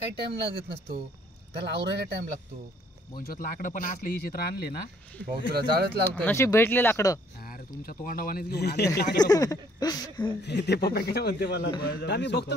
टाइम लागत नसतो, त्याला आवरायला टाइम लागतो. बोंचोत लाकडं पण असले ही चित्र आणले ना भाऊ तुला जाळच लागतो. नशीब भेटले लाकडं. अरे तुमच्या तोंडावानेच घेऊन आले लाकडं. ते पप्पा काय म्हणते मला, आम्ही बघतो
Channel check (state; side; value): normal; both; correlation 0.63